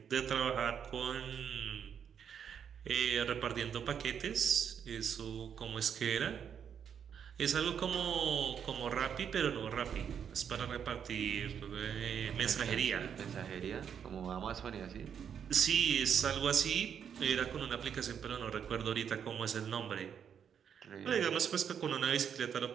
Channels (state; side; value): quieter; left; 8.0 dB